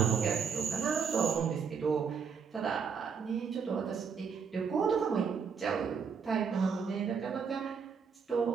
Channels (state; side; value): quieter; left; 6.3 dB